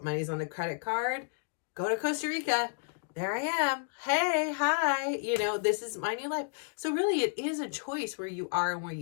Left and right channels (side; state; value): right; silent; digital silence